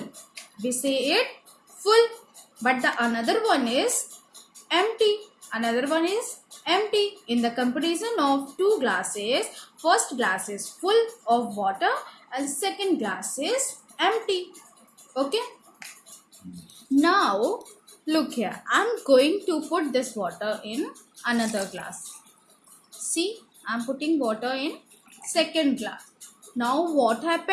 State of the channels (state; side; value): identical; both; correlation 1.00